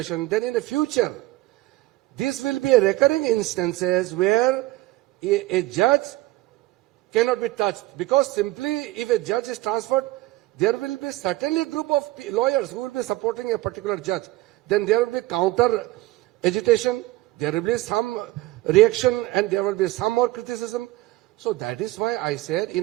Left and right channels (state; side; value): quieter; left; 18.1 dB